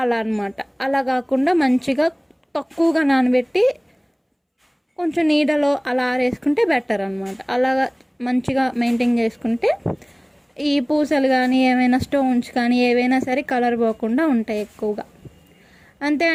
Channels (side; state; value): both; identical; correlation 1.00